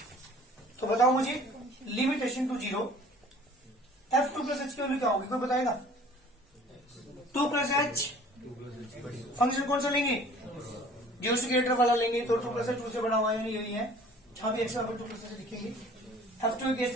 तो बताओ मुझे limit h to 0 f2 plus h की वैल्यू क्या होगी, कोई बताएगा. 2 प्लस h फंक्शन कौन सा लेंगे, 0 से ग्रेटर वाला लेंगे. तो 2 प्लस 2 से बड़ा हुआ है, यही है. जहां भी x 2 प्लस से लिखेंगे. f2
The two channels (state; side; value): normal; both; correlation 0.49